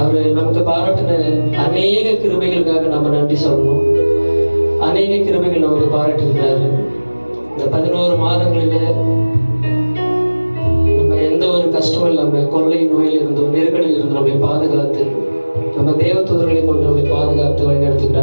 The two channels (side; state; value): both; inverted; correlation -1.00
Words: நமக்கு பாராட்டின அநேக கிருபைகளுக்காக நம்ம நன்றி சொல்லணும். அநேக கிருபைகள் நமக்கு பாராட்டியிருக்கிறாரு. இந்த 11 மாதங்களில் நம்ம எந்த ஒரு கஷ்டமும் இல்லாமல் கொள்ளை நோயில் இருந்தோம், நெருக்கடியில் இருந்து நம்மை பாதுகாத்து, நம்ம தேவதூதர்களை கொண்டு நம்மை பாதுகாத்து